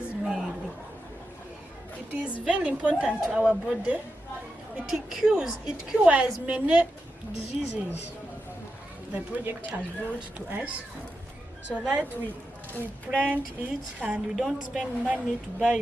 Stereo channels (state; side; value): normal; both; correlation 0.88